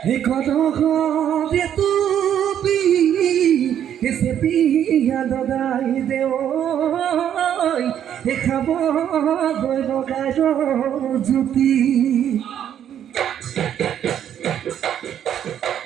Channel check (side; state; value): left; quieter; 9.8 dB